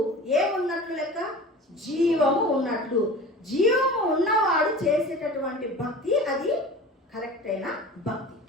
ఏమున్నట్లు లెక్క? జీవము ఉన్నట్లు. జీవము ఉన్నవాడు చేసేటటువంటి భక్తి అది కరెక్ట్ అయిన భక్తి.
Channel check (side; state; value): both; normal; correlation 0.38